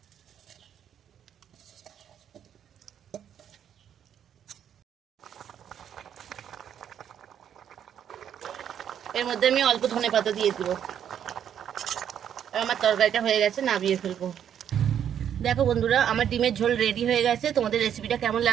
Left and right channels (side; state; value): left; quieter; 9.2 dB